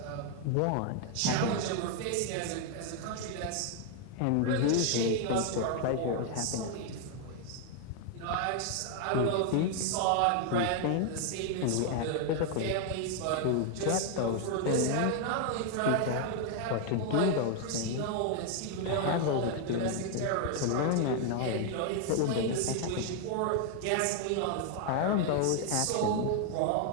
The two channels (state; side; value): different; both; correlation 0.00